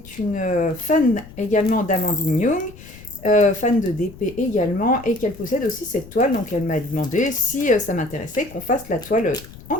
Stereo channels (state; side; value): noise; left; rumble, 18 dB below the sound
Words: une fan également d'Amandine Young, fan de DP également, et qu'elle possède aussi cette toile. Donc elle m'a demandé si ça m'intéressait qu'on fasse la toile en